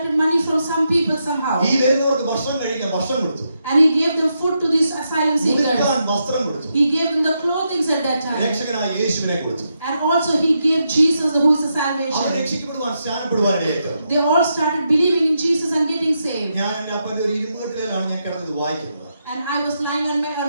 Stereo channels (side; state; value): both; inverted; correlation -0.83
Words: money from some people somehow. ഈ വരുന്നവർക്ക് ഭക്ഷണം കഴിക്കാൻ ഭക്ഷണം കൊടുത്തു, And he gave them food to these asylum seekers. ഉടുക്കാൻ വസ്ത്രം കൊടുത്തു, He gave them the clothing at that time. രക്ഷകനായ യേശുവിനെ കൊടുത്തു. And also he gave Jesus who is the our salvation. രക്ഷിക്കപ്പെടുവാൻ സ്നാനപ്പെടുവാനായിട്ട് They all started believing in Jesus and getting saved. ഞാൻ എന്റെ അപ്പന്റെ ഒരു ഇരുമ്പുകെട്ടിലാണ് ഞാൻ കിടന്നത് വായിക്കുന്നത്. And I was lying